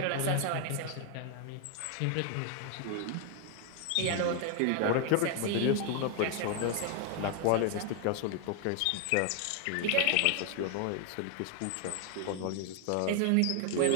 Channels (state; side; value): different; both; correlation 0.00